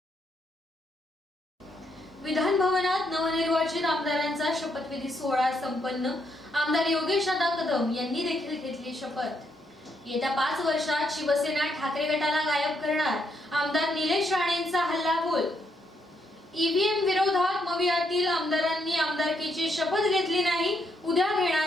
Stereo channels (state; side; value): normal; both; correlation 0.76